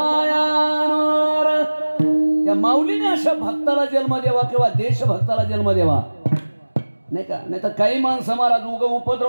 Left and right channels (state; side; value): inverted; both; correlation -1.00